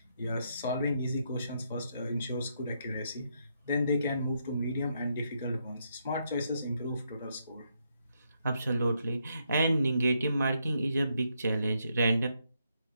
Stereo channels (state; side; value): inverted; both; correlation -0.77